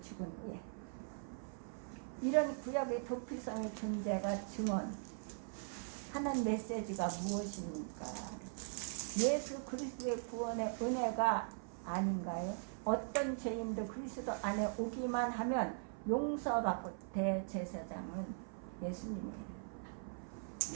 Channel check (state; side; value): silent; left; 51 dB below the other